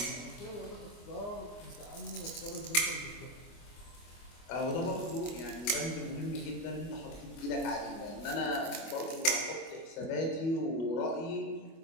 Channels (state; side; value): late; right; 24 ms